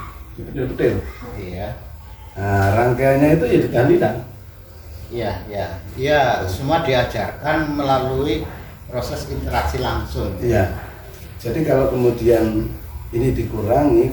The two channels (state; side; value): identical; both; correlation 1.00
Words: detail. Iya. Nah, rangkaiannya itu ya tahlilan. Iya, semua diajarkan melalui proses interaksi langsung. Iya. Jadi kalau kemudian ini dikurangi,